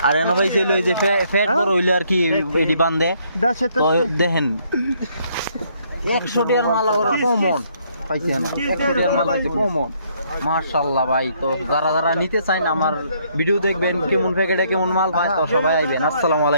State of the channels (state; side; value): inverted; both; correlation -0.68